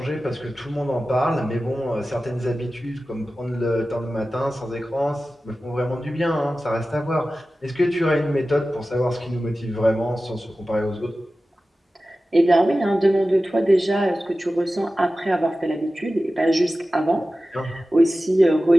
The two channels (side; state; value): both; normal; correlation 0.95